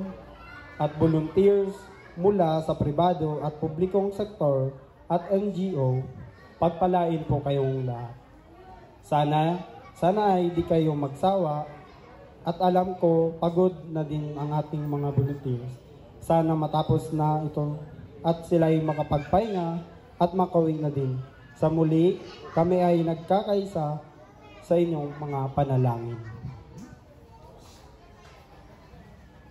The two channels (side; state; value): both; identical; correlation 1.00